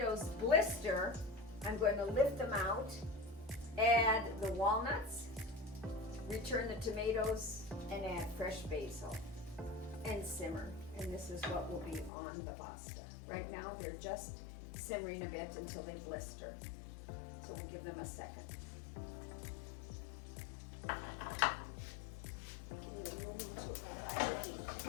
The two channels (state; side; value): drops out; right; at 12.1 s